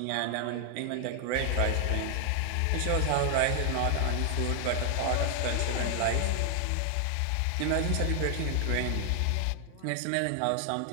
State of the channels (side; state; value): both; different; correlation 0.00